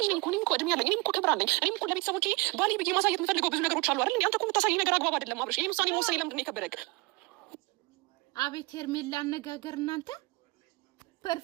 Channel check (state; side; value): quieter; left; 25.1 dB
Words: ልጅ ነኝ እኮ እኔም እኮ እድሜ ያለኝ እኔም እኮ ክብር አለኝ። እኔም እኮ ለቤተሰቦቼ ባሌ ብዬ ማሳየት የምፈልገው ብዙ ነገሮች አሉ አይደል? እንዴ አንተ እኮ የምታሳየኝ ነገር አግባብ አይደለም አብርሽ። ይሄን ውሳኔ መወሰን ለምንድን ነው የከበደክ? አቤት ሄርሜላ አነጋገር እናንተ